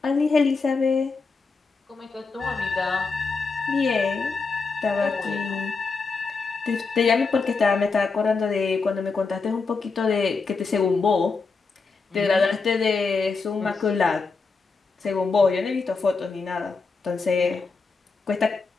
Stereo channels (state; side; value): quieter; right; 4.5 dB